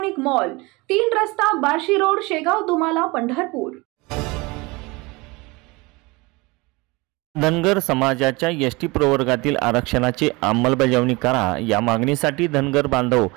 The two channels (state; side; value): quieter; left; 24.5 dB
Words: मॉल, 3 रस्ता, बार्शी रोड, शेगाव, दुमाला, पंढरपूर। धनगर समाजाच्या एसटी प्रवर्गातील आरक्षणाची अंमलबजावणी करा या मागणीसाठी धनगर बांधव